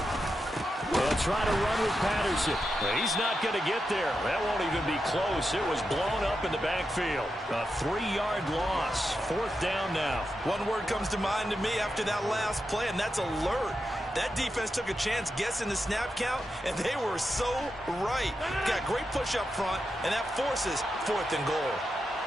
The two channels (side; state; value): both; normal; correlation 0.88